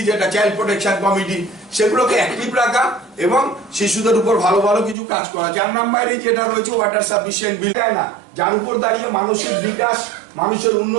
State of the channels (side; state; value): left; drops out; at 5.0 s